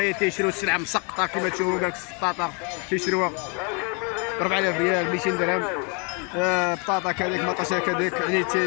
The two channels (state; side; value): quieter; right; 34.5 dB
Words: تيشريو السلعه مسقطه كما تشوفوا. قالك السطاطا تيشريوها 4000 ريال 200 درهم، بطاطا كذلك مطاشه كذلك. يعني